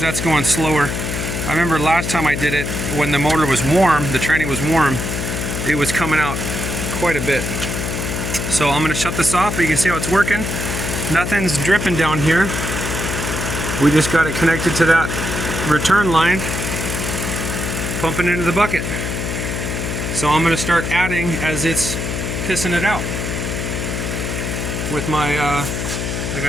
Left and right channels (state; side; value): noise; left; hum, 3 dB below the sound